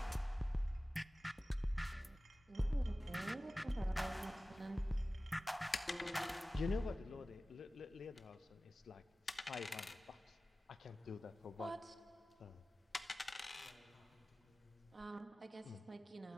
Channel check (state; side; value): normal; both; correlation 0.97